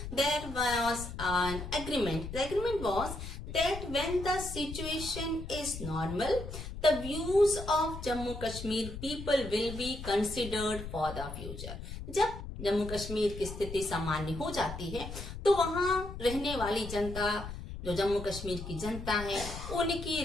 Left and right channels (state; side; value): noise; left; rumble, 9 dB below the sound